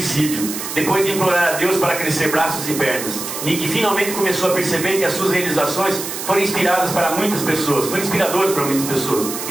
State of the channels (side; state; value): right; noise; hiss, 7 dB below the sound